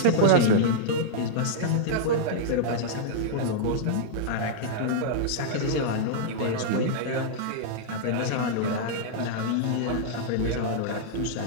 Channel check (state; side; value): different; both; correlation -0.02